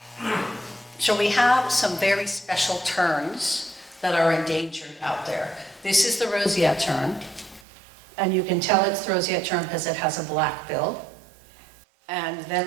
we have some very special terns that are endangered out there. This is the roseate tern, and you can tell it's the roseate tern because it has a black bill. And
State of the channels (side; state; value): left; drops out; at 7.7 s